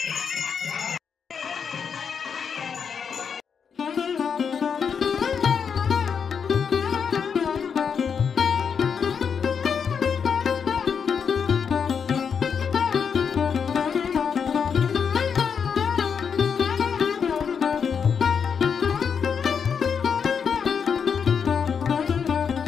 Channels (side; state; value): right; quieter; 6.7 dB